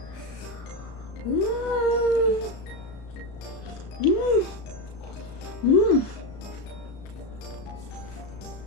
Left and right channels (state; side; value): late; right; 35 ms